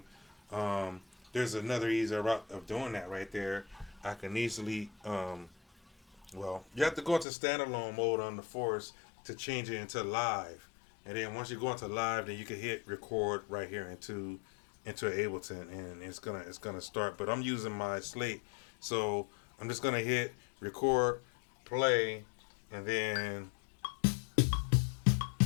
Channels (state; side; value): drops out; right; at 7.2 s